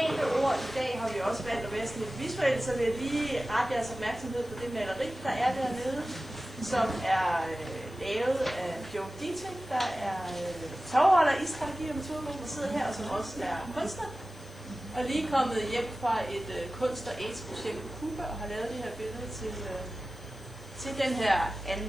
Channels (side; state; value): left; noise; hiss, 27 dB below the sound